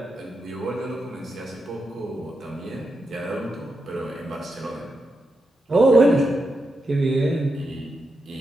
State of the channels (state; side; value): normal; both; correlation 0.86